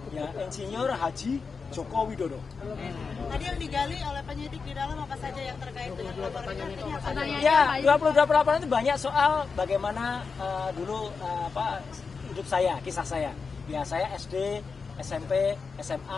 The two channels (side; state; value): right; quieter; 5.0 dB